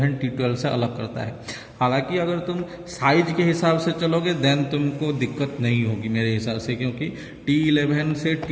T12 से अलग करता है। हालांकि अगर तुम साइज के हिसाब से चलोगे देन तुमको दिक्कत नहीं होगी मेरे हिसाब से, क्योंकि T11 से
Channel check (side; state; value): both; identical; correlation 1.00